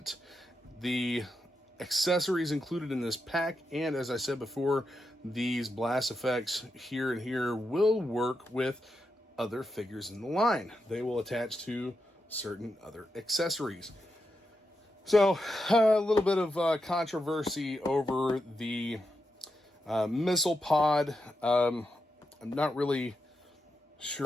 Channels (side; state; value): both; normal; correlation 0.86